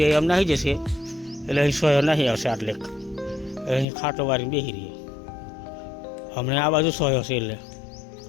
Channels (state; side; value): drops out; right; at 3.9 s